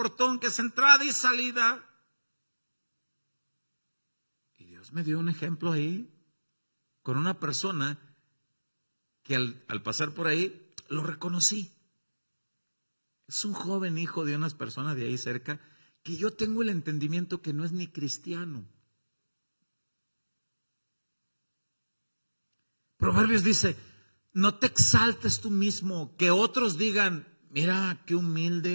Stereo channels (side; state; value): both; inverted; correlation -1.00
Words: que es entrada y salida? Y Dios me dio un ejemplo ahí con una persona que al pasar por ahí lo reconocí. Es un joven hijo de unas personas de ahí cerca que yo tengo el entendimiento que no es ni cristiano. Proverbios dice: no te exaltes tú mismo, que otros digan, mira qué